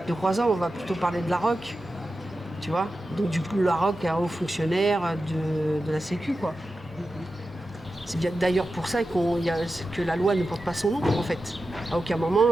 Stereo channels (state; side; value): normal; both; correlation 0.92